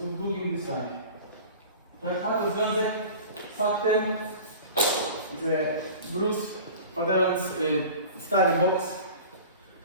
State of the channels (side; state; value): both; inverted; correlation -0.39